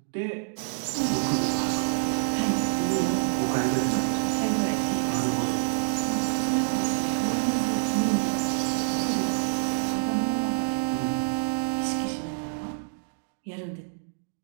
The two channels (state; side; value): silent; left; digital silence